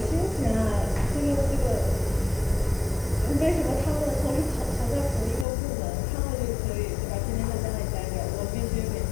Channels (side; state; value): right; drops out; at 5.5 s